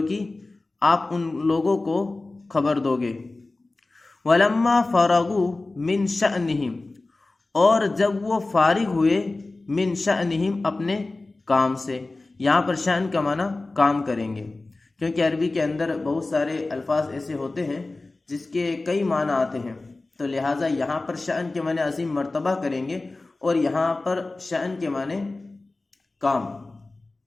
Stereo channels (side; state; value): right; quieter; 3.2 dB